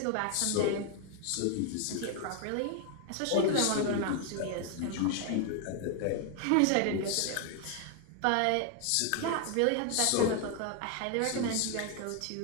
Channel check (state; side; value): different; both; correlation 0.00